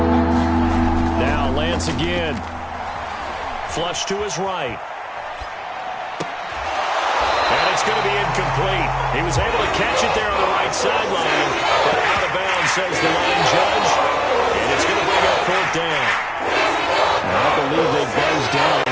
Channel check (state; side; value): identical; both; correlation 1.00